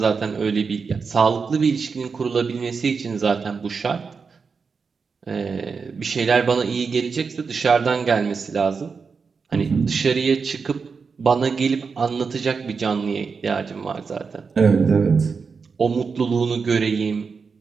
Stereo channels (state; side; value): quieter; left; 5.2 dB